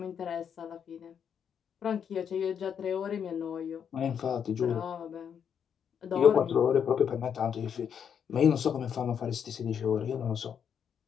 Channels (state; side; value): quieter; right; 7.8 dB